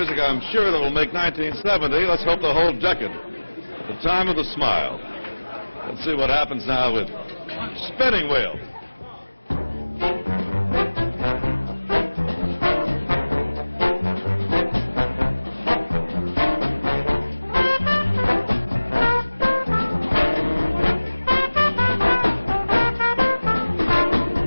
I'm sure that will make 1970, let's hope the whole decade, the time of the smile. Let's see what happens now with Spinning Wheel.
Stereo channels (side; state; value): both; inverted; correlation -1.00